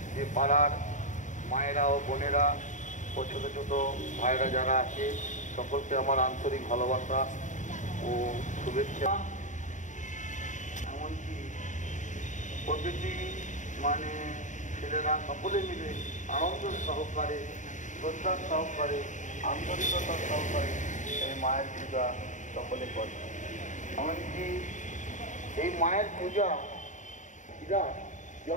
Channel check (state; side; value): late; right; 0.36 ms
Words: যে পাড়ার মায়েরা ও বোনেরা ও ছোটো ছোটো ভাইরা যারা আছে, সকলকে আমার আন্তরিক ভালোবাসা ও শুভেচ্ছা। এমনকি প্রতিটি ছেলেরা সকলে মিলে আনন্দ সহকারে, শ্রদ্ধার সহকারে, আন্তরিকতার সহকারে এই মায়ের পূজা সকলে করে। এমনকি এই মায়ের পূজা